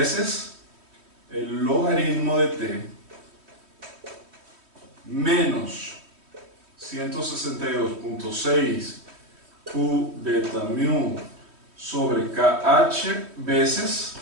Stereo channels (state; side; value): late; left; 3.1 ms